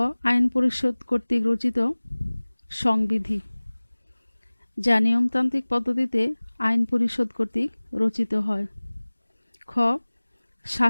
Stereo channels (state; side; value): inverted; both; correlation -1.00